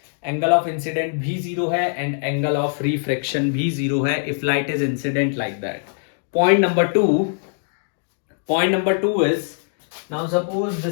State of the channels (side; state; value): right; silent; digital silence